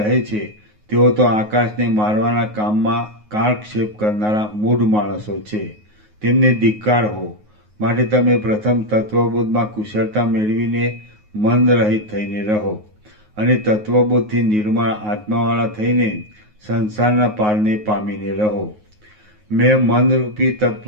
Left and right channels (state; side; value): late; left; 9.5 ms